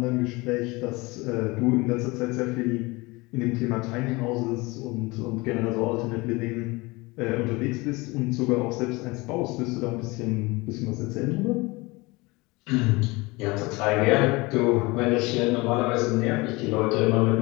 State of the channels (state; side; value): quieter; right; 23.7 dB